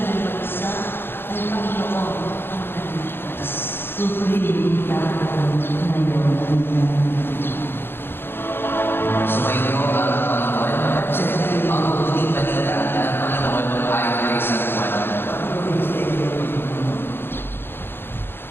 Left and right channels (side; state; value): right; late; 0.10 ms